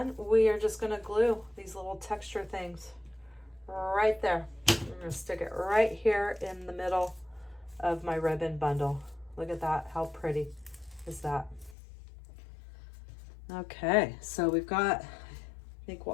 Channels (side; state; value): right; drops out; at 11.8 s